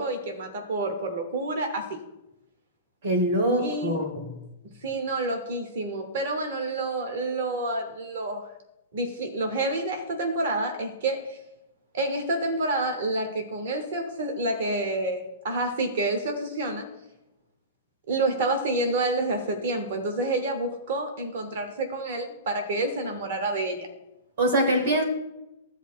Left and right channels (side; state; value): both; inverted; correlation -0.30